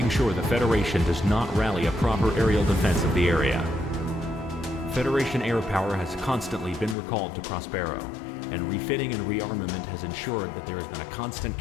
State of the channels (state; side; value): drops out; right; at 7.0 s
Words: sure the Federation does not rally a proper aerial defense of the area. Federation air power has constantly been recalled to Prospero, and refitting and rearmament has ensured that there has been a constant